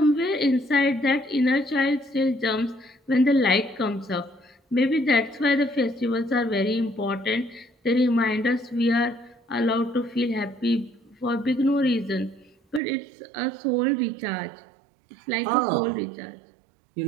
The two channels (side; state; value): left; drops out; at 12.8 s